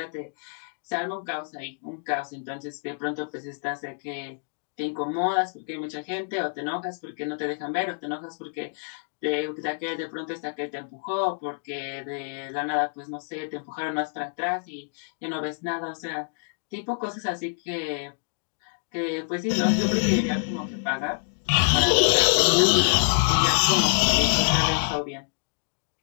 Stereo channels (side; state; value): right; silent; digital silence